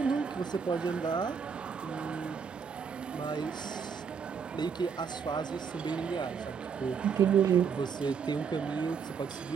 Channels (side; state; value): left; quieter; 6.4 dB